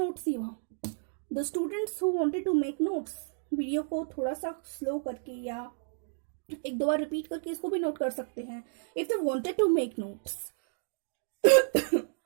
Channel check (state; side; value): silent; left; digital silence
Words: ही हुआ। The students who wanted to make notes, video को थोड़ा सा स्लो करके या एक दो बार रिपीट करके इसको भी नोट कर सकते हैं if they wanted to make notes.